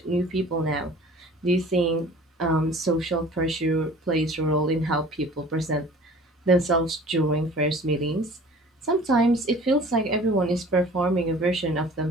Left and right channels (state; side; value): normal; both; correlation 0.47